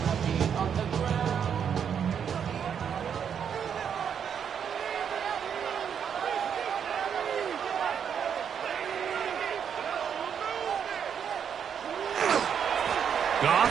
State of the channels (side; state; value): left; quieter; 7.8 dB